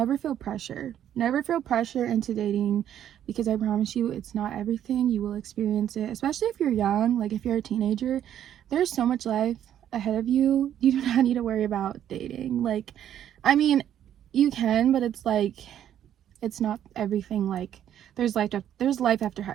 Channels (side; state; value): left; quieter; 10.5 dB